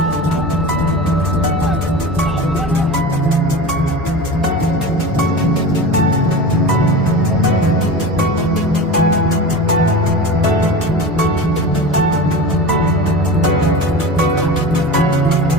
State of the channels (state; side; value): noise; left; hum, 16 dB below the sound